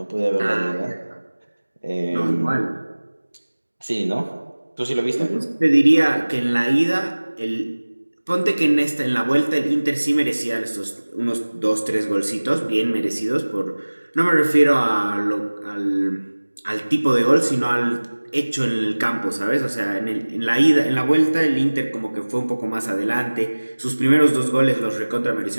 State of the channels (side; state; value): both; inverted; correlation -1.00